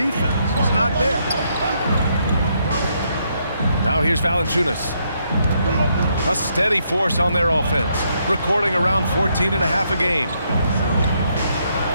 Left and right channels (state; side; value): inverted; both; correlation -0.75